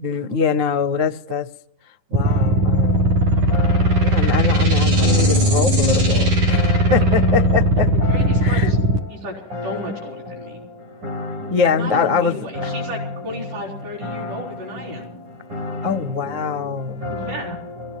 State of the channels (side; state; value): left; late; 10 ms